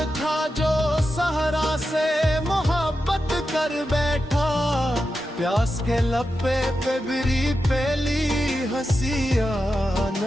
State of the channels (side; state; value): both; normal; correlation 0.90